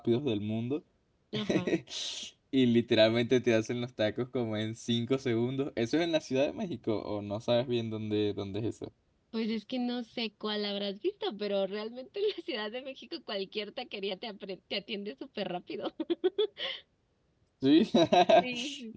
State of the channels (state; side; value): identical; both; correlation 1.00